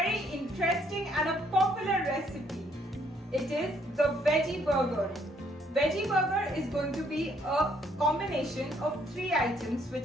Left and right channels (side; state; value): both; normal; correlation 0.67